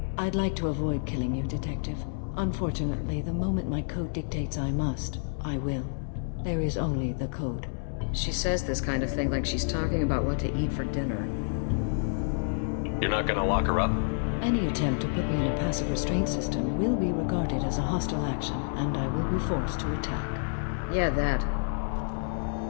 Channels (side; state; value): right; silent; 58 dB below the other